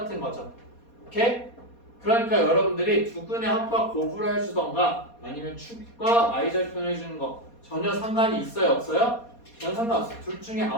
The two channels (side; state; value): right; late; 4.2 ms